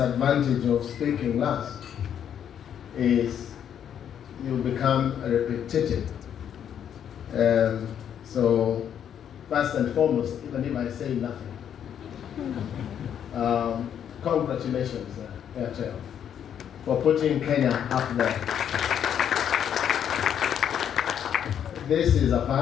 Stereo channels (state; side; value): quieter; right; 9.1 dB